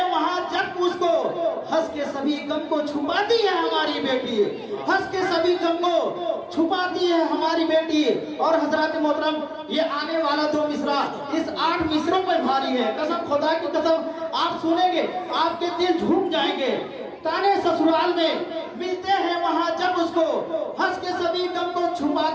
वहां जब उसको, हंस के सभी गम को छुपाती है हमारी बेटी, हंस के सभी गम को छुपाती है हमारी बेटी। और हजरत मोहतरम, ये आने वाला 2 मिसरा इस 8 मिसरों पर भारी है। कसम खुदा की कसम, आप सुनेंगे आपके दिल झूम जाएंगे। ताने ससुराल में मिलते हैं वहां जब उसको, हंस के सभी गम को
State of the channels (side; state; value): both; identical; correlation 1.00